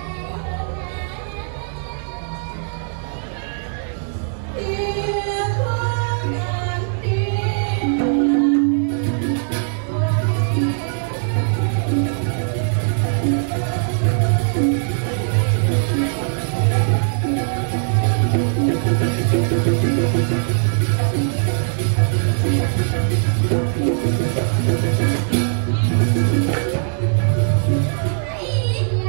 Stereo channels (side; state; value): left; silent; digital silence